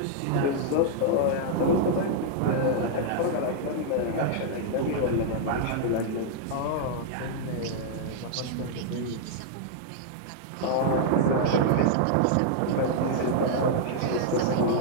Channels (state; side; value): different; both; correlation -0.01